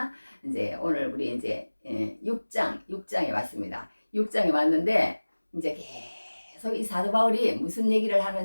이제 오늘 우리 이제 6장에 왔습니다. 6장에 왔는데 이제 계속 이 사도 바울이 무슨 얘기를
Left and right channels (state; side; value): inverted; both; correlation -1.00